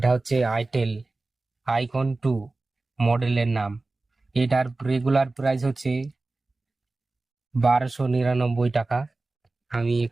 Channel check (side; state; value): left; quieter; 3.3 dB